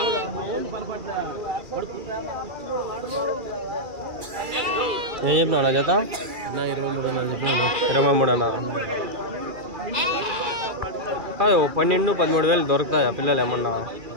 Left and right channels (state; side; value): late; left; 2.3 ms